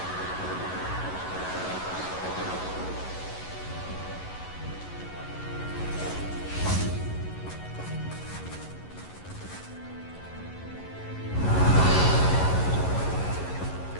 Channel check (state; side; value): late; right; 11 ms